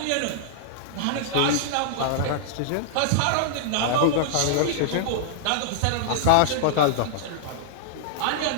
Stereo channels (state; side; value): different; both; correlation -0.01